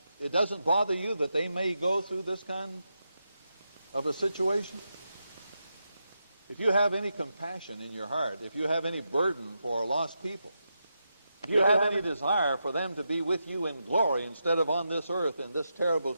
it doesn't bother you that they may go through this kind of a situation? If you have any compassion in your heart, if you have any burden for lost people, if you have any desire for them to be with you in glory instead of on this earth in this terrible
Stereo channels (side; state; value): both; inverted; correlation -0.86